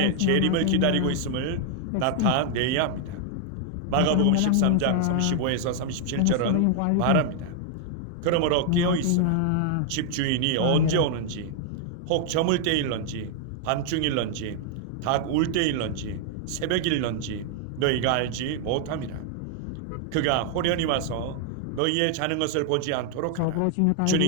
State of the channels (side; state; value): both; different; correlation 0.00